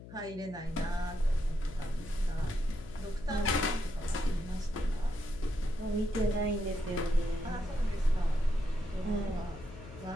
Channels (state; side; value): noise; left; hum, 15 dB below the sound